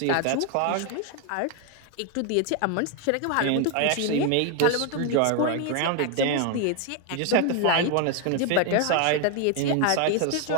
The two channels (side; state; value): both; different; correlation 0.01